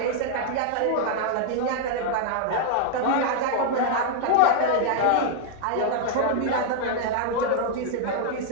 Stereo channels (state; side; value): different; both; correlation -0.01